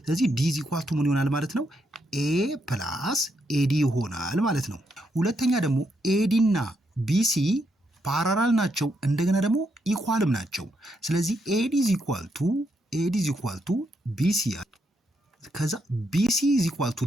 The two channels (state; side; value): normal; both; correlation 0.79